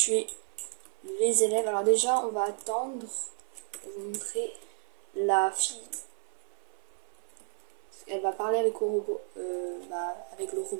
les élèves. Alors déjà, on va attendre pour vous montrer la fille. Elle va parler avec le robot, avec le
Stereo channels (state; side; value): silent; left; 57 dB below the other